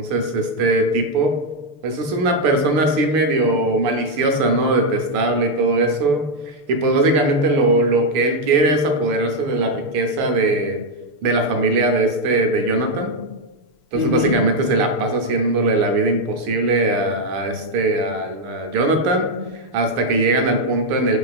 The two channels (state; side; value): late; left; 6.8 ms